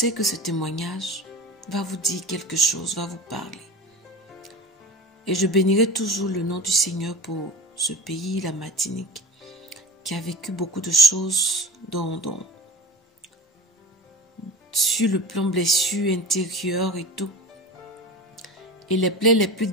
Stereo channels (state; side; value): normal; both; correlation 0.33